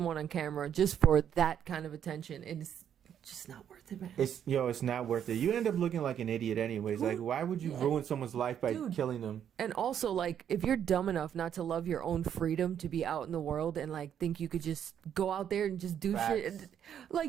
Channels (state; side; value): quieter; left; 9.2 dB